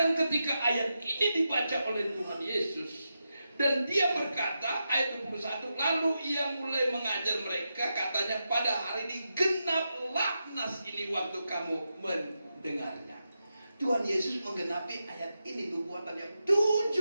ketika ayat ini dibaca oleh Tuhan Yesus, dan Dia berkata, ayat 21, lalu Ia mulai mengajar mereka, katanya, pada hari ini genaplah nas ini waktu kamu mendengarnya. Tuhan Yesus menggenapi ayat ini, nubuatan yang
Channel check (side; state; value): both; inverted; correlation -0.88